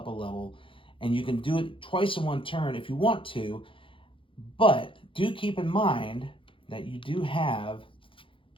a level. And you can do it twice in 1 turn if you want to, but do keep in mind that you do have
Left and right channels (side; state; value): right; late; 0.25 ms